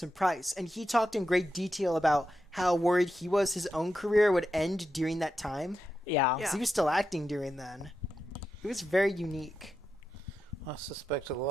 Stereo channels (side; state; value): both; normal; correlation 0.88